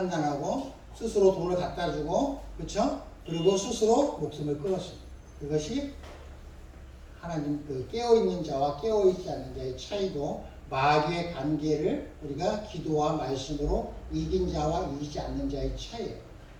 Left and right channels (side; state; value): both; identical; correlation 1.00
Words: 스스로 돈을 갖다 주고 그렇죠? 그리고 스스로 목숨을 끊었습니다. 그것이 하나님 그 깨어있는 자와 깨어있지 않는 자의 차이도 마귀의 관계를 우리가 기도와 말씀으로 이긴 자와 이기지 않는 자의 차이예요.